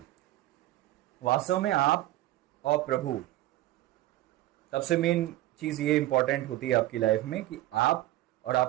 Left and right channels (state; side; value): quieter; left; 15.9 dB